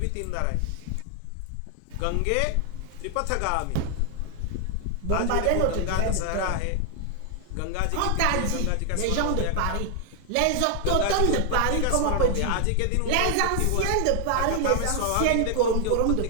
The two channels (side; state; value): both; different; correlation 0.00